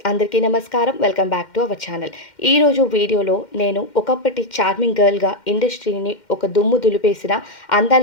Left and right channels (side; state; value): right; late; 2.1 ms